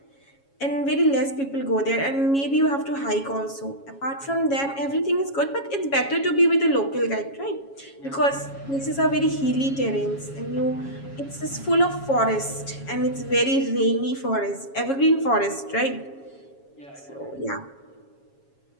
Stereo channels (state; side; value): late; right; 7.3 ms